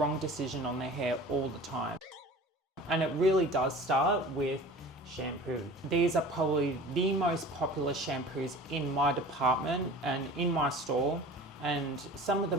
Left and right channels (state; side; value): normal; both; correlation 0.41